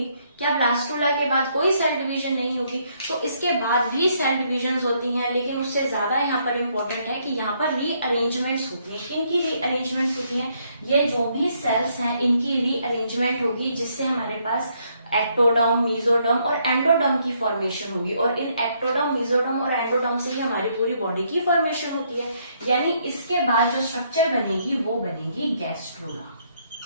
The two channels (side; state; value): both; inverted; correlation -0.71